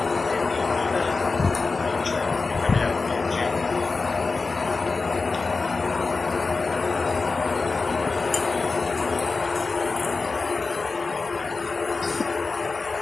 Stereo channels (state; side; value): quieter; right; 4.1 dB